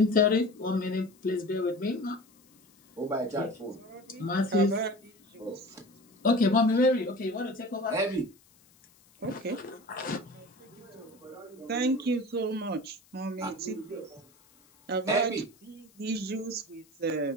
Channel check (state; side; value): noise; left; hiss, 30 dB below the sound